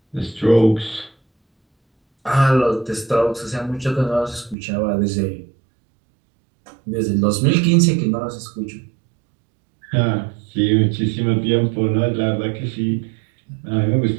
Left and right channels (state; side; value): drops out; left; at 4.5 s